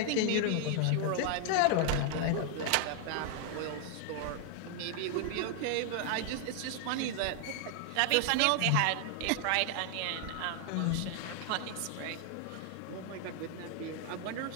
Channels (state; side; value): different; both; correlation 0.00